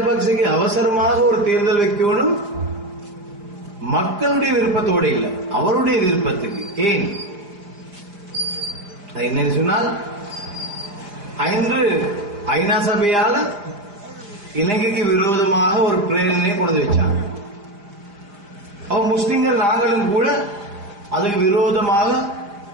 அவசரமாக ஒரு தேர்தல் வைக்கணும், மக்களுடைய விருப்பத்தோடு இல்லை, அவருடைய விருப்பத்துக்கு. ஏன் என்ன சொன்னால், இன்று ஐநா சபையால இலங்கைக்கு விரோதமாக ஒரு பிரேரணையை கொண்டு வச்சாங்க. அவன் முஸ்லிம்கள் நாங்களும் கூட அதுக்கு விரோதமாக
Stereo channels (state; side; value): late; left; 4.9 ms